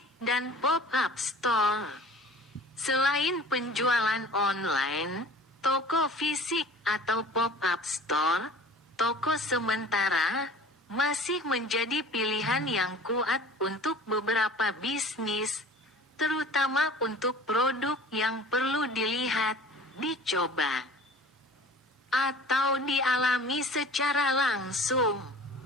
dan pop-up store. Selain penjualan online, toko fisik atau pop-up store, toko sementara, masih menjadi pilihan yang kuat untuk beberapa bisnis, terutama untuk produk yang perlu dilihat, dicoba, atau dialami secara langsung.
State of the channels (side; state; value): both; normal; correlation 0.44